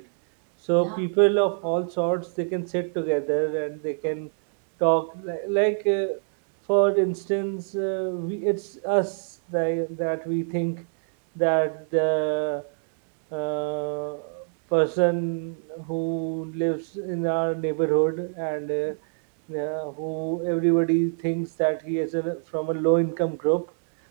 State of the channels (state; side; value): silent; left; digital silence